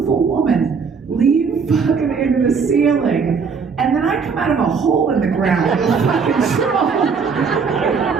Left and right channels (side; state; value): left; quieter; 5.5 dB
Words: woman leave fucking into the ceiling. And then I come out of a hole in the ground with a fucking troll.